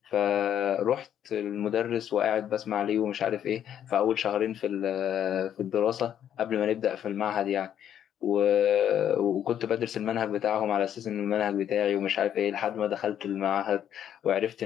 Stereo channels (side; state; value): right; quieter; 9.9 dB